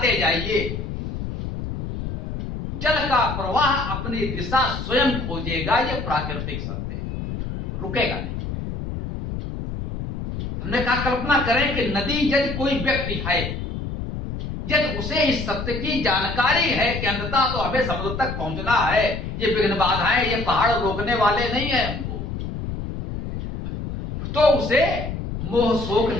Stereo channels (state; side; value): noise; left; rumble, 6 dB below the sound